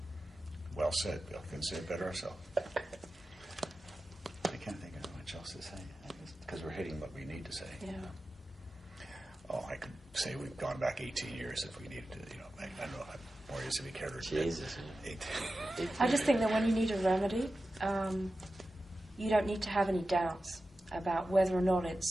Well said, Bill. Couldn't say it better ourselves. I can't think of much else to say, because we're hitting what we need to say. Yeah. Oh, I could say we've gone back 18 years if we needed to, you know, I don't know how more years if we cared. Jesus. I just think that when you need a remedy, you don't need to have any doubts about whether or not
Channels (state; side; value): normal; both; correlation 0.93